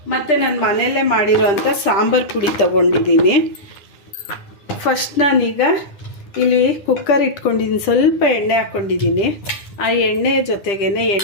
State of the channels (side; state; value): right; late; 10 ms